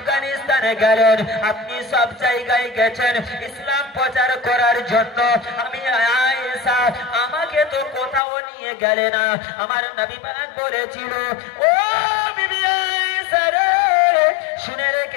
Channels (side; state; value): right; drops out; at 8.2 s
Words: গেলেন, আপনি সব জায়গায় গেছেন ইসলাম প্রচার করার জন্য। আমি আয়েশা, আমাকে তো কোথাও নিয়ে গেলে না। আমার নবী পাক বলেছিল, ও বিবি আয়েশা রে, শুনে